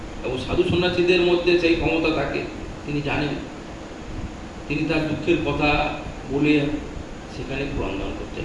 এবং সাধু সন্ন্যাসীদের মধ্যে সেই ক্ষমতা থাকে, তিনি জানেন। তিনি তার দুঃখের কথা বলে সেখানে ক্রন্দন করতে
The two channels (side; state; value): both; identical; correlation 1.00